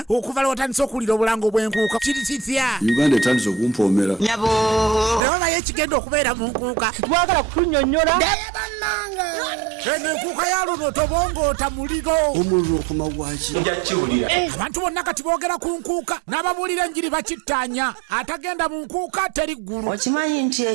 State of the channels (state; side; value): drops out; left; at 5.2 s